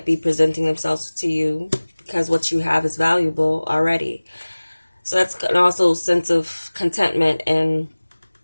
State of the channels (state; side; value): inverted; both; correlation -1.00